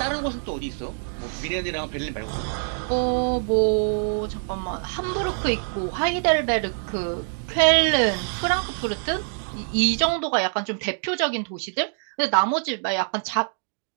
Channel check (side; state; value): left; silent; 62 dB below the other